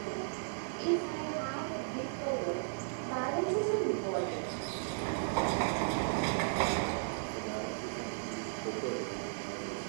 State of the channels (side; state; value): left; silent; digital silence